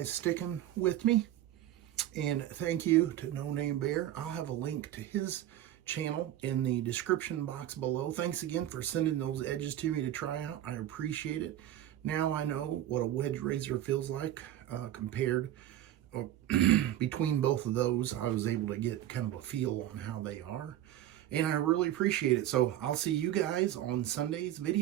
sticking with me. And thank you to No Name Bear. I'll have a link to his channel in the description box below. Thanks again for sending those edges to me to try out. I appreciate it. Now I know what a wedge razor feels like compared between both of those. I was able to get kind of a feel on how they are. And I really appreciate it. So I'll see you guys on Sunday's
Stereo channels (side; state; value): left; quieter; 12.6 dB